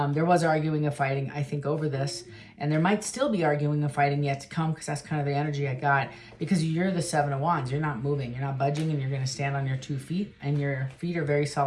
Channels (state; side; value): identical; both; correlation 1.00